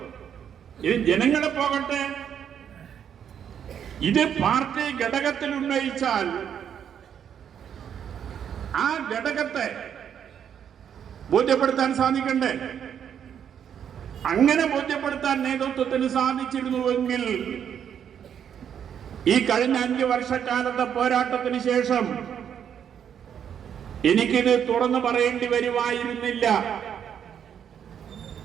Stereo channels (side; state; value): left; quieter; 8.6 dB